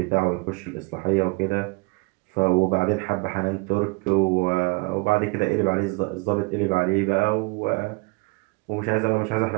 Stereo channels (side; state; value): left; quieter; 28.4 dB